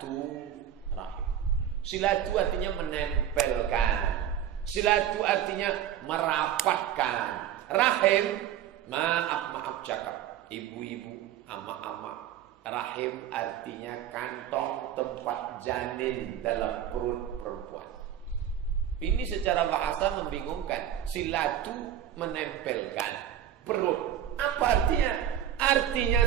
Silatu artinya menempelkan. Silatu artinya merapatkan. Rahim, maaf cakap. Ibu-ibu, ama-ama. Rahim artinya kantong tempat janin dalam perut perempuan. Ini secara bahasa membingungkan. Silatu menempelkan. Perut. Apa artinya? Artinya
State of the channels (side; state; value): left; quieter; 10.3 dB